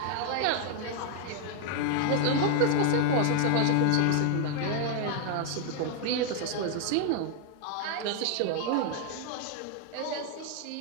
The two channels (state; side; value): different; both; correlation 0.00